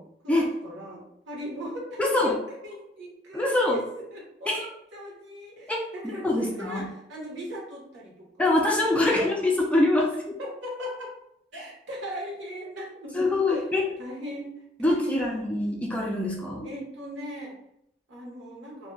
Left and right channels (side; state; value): both; normal; correlation 0.64